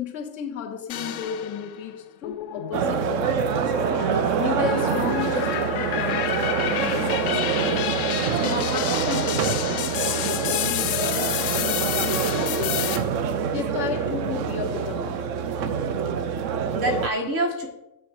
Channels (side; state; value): left; late; 3.6 ms